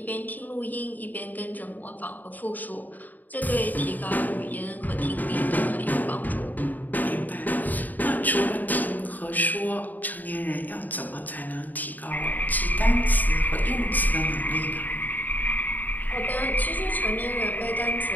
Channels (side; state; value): right; late; 0.084 ms